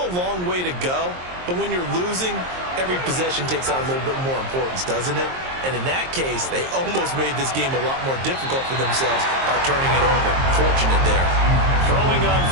a long way to go, but when you're losing, every possession takes on a little bit more importance, doesn't it? And in that case, they almost made this game a lot more difficult for themselves by turning it over. Fortunate there. Throwing on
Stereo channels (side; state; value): left; late; 23 ms